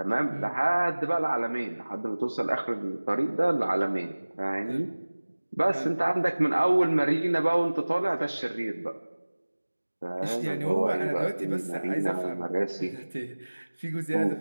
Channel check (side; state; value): both; inverted; correlation -1.00